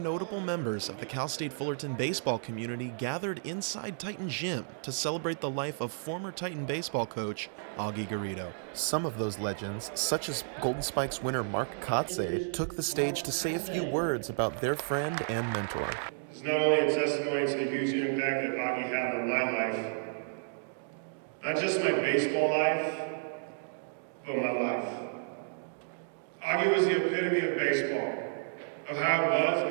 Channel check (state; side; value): silent; left; digital silence